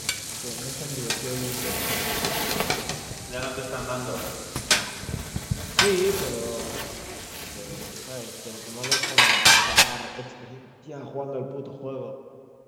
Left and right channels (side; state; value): both; identical; correlation 1.00